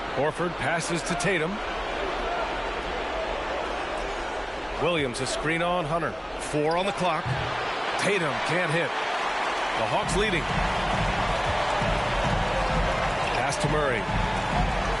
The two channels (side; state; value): both; identical; correlation 1.00